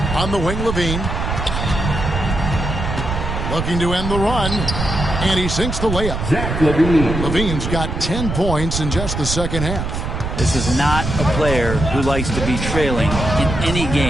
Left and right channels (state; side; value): noise; right; rumble, 3 dB below the sound